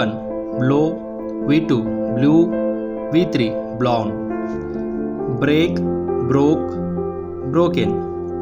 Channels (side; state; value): both; identical; correlation 1.00